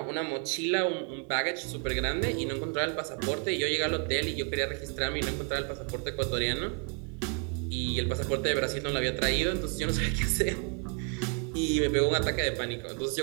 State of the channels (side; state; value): left; quieter; 39.5 dB